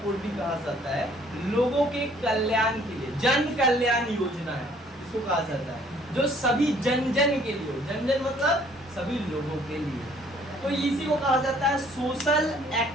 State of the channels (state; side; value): normal; both; correlation 0.60